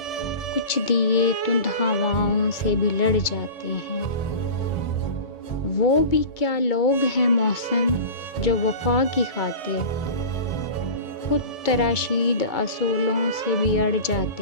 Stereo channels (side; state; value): right; late; 2.2 ms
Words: कुछ दिए तुंद हवाओं से भी लड़ जाते हैं। वो भी क्या लोग हैं मौसम जो वफा की खातिर खुद तराशीद असूलों से भी अड़